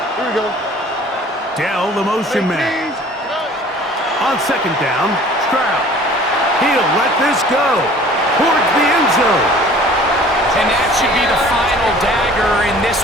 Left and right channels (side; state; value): both; normal; correlation 0.49